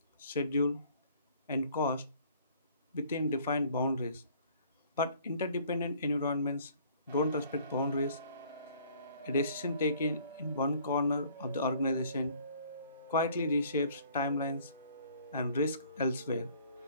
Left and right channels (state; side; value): inverted; both; correlation -0.56